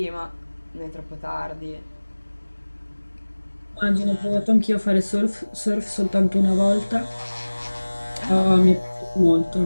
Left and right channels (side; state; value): both; inverted; correlation -1.00